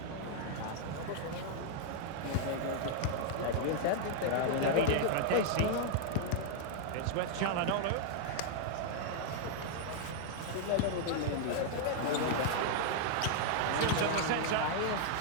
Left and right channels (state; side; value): different; both; correlation -0.01